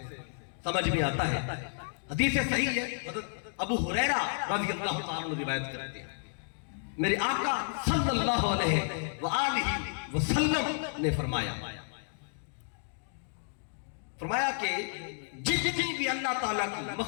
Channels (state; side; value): silent; right; digital silence